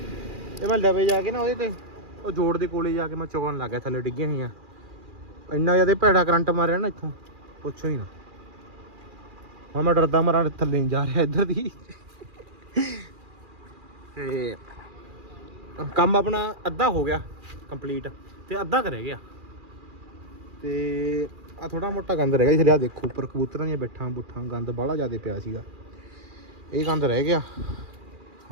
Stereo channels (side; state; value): left; late; 2.4 ms